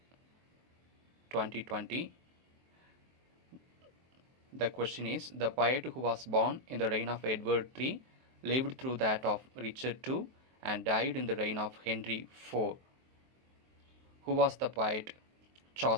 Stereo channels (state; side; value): late; left; 23 ms